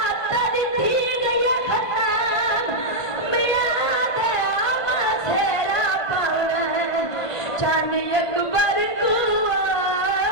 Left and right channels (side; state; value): right; late; 1.5 ms